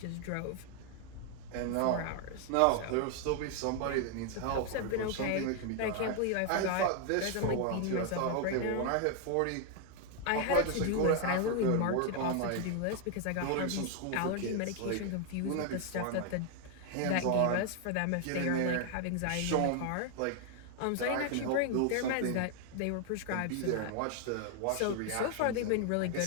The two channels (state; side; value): different; both; correlation 0.00